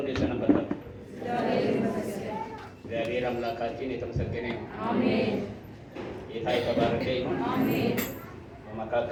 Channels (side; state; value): both; identical; correlation 1.00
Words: ሰነበታችሁ? እግዚአብሔር አምላካችን የተመሰገነ ይሁን። አሜን። ጌታ የተባረከ ይሁን። አሜን።